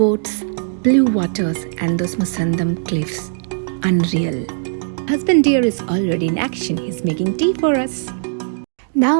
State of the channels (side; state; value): left; silent; digital silence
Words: blue waters, and those Musandam cliffs. Unreal. Husband dear is already in action. He's making tea for us.